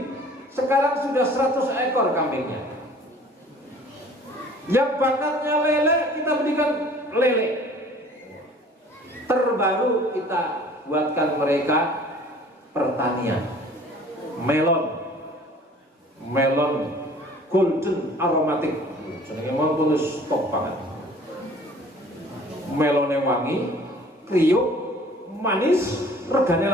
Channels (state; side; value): normal; both; correlation 0.50